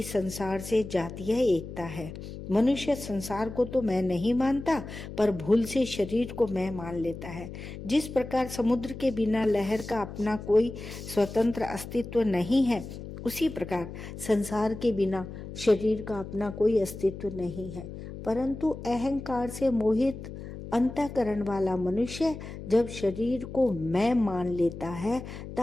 संसार से जातीय एकता है। मनुष्य संसार को तो मैं नहीं मानता, पर भूल से शरीर को मैं मान लेता है। जिस प्रकार समुद्र के बिना लहर का अपना कोई स्वतंत्र अस्तित्व नहीं है, उसी प्रकार संसार के बिना शरीर का अपना कोई अस्तित्व नहीं है। परंतु अहंकार से मोहित अंतःकरण वाला मनुष्य जब शरीर को मैं मान लेता है,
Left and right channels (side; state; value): left; noise; hum, 11 dB below the sound